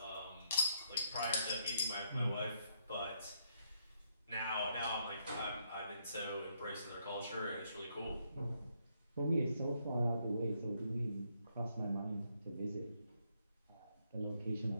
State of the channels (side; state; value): both; inverted; correlation -0.73